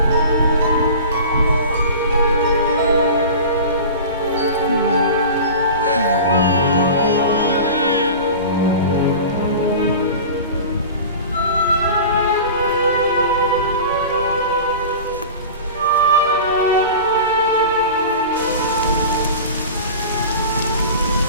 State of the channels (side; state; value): both; inverted; correlation -0.35